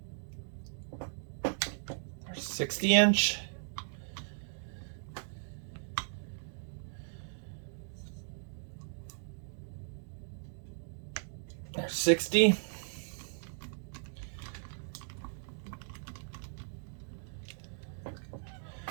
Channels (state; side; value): silent; left; digital silence